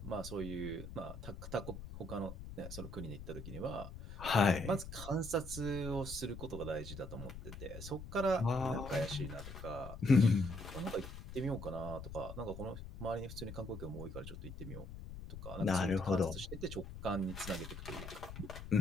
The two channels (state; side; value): noise; left; rumble, 10 dB below the sound